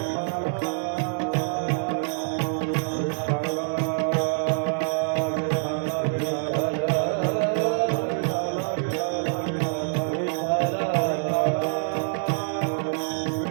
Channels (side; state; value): left; silent; digital silence